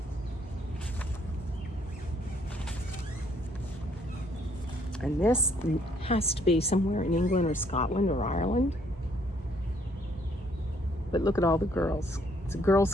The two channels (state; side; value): normal; both; correlation 0.66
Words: And this has to be somewhere in England or Scotland or Ireland. But look at all the girls. It's a Girl